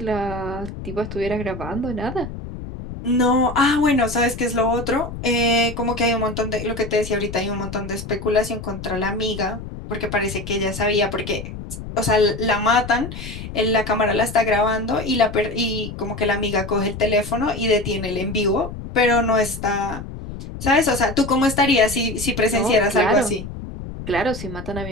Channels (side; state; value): left; noise; rumble, 10 dB below the sound